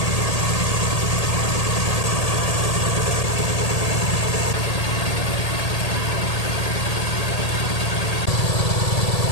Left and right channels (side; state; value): right; late; 1.8 ms